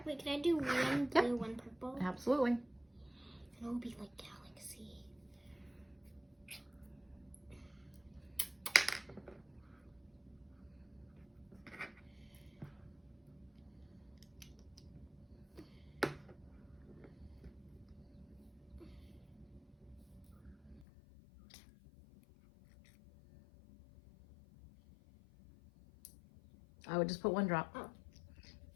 Wait, can I do one blue, one purple? Absolutely. And it'll be like galaxy. I would just put one drop.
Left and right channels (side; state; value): right; drops out; at 20.9 s